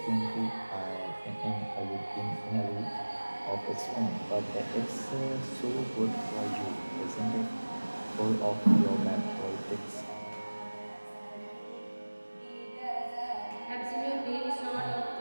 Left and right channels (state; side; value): inverted; both; correlation -1.00